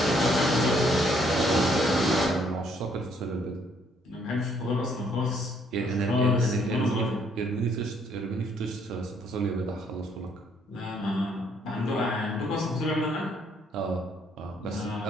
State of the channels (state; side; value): normal; both; correlation 0.67